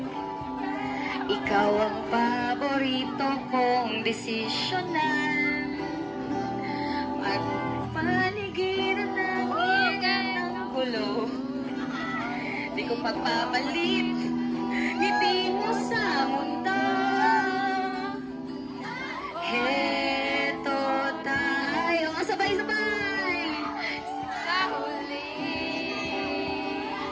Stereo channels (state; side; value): identical; both; correlation 1.00